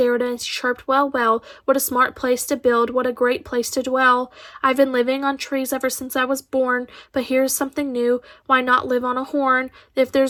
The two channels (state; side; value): identical; both; correlation 1.00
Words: and chirped, "Well, well, what a smart place to build, what a great place to dwell. I've been living on trees ever since I was born, but here's something new. Why not live on a horn? If